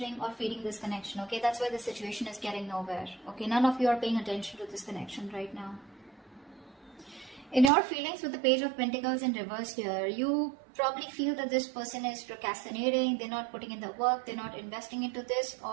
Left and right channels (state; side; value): drops out; left; at 7.7 s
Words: or feeding this connection, okay. That's why the situation is getting nowhere, okay. None of you are paying attention to this connection right now. In your feelings with the Page of Pentacles in reverse here, you probably feel that this person is procrastinating, they're not putting in the work, they're not investing into this,